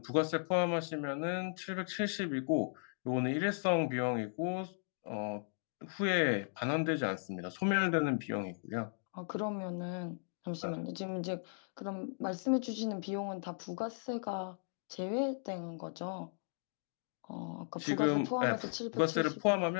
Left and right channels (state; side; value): silent; right; digital silence